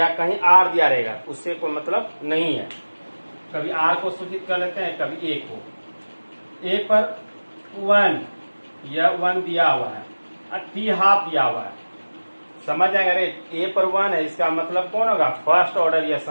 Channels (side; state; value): both; inverted; correlation -1.00